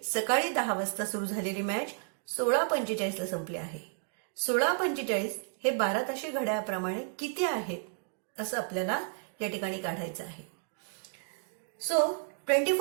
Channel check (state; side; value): silent; left; digital silence